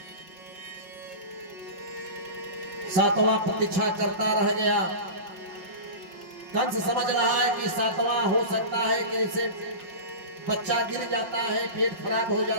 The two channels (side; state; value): left; late; 5.5 ms